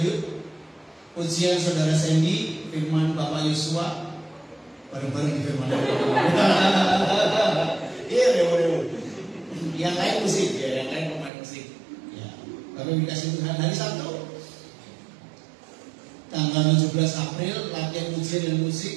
pujian Saudara Sandy, firman Bapak Yosua, bareng-bareng di firman Iya, yang lain musik ya, yang lain pemain musik. Ya, kami dikasih Tuhan. Hari Sabtu tanggal 17 April latihan pujian dan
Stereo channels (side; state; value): left; drops out; at 11.3 s